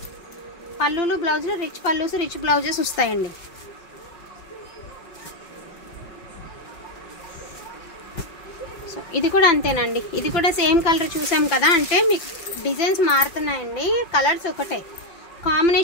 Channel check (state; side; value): late; right; 5.4 ms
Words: పళ్ళులు బ్లౌజులు రిచ్ పళ్ళుస్ రిచ్ బ్లౌజెస్ వస్తాయండి. సో ఇది కూడా అంతేనండి. ఇది కూడా సేమ్ కలర్ చూసాం కదా, అంటే మీకు డిజైన్స్ మారుతున్నాయండి. కలర్స్ ఒకటే,